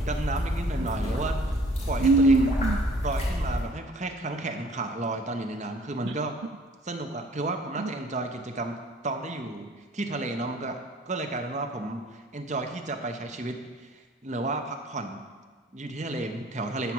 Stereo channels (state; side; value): normal; both; correlation 0.54